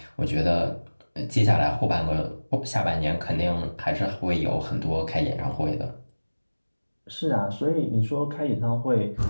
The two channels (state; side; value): inverted; both; correlation -1.00